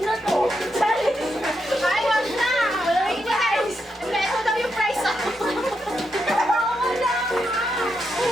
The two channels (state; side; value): normal; both; correlation 0.83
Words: na to. Ay, wag na. Wait, guys. Ito daw yung price ako.